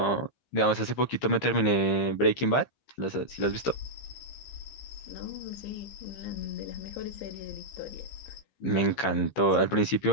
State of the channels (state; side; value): late; right; 15 ms